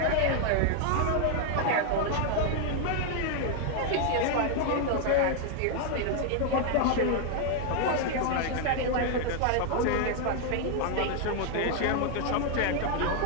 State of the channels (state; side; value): different; both; correlation 0.00